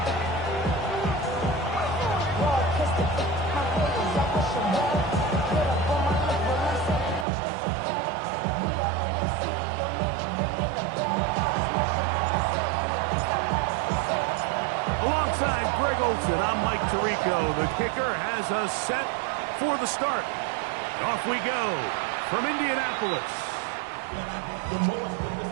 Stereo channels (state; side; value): drops out; left; at 7.2 s